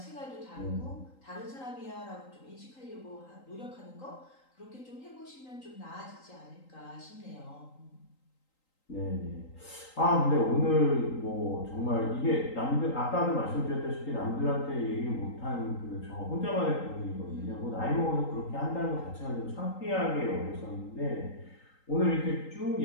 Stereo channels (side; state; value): right; late; 3.8 ms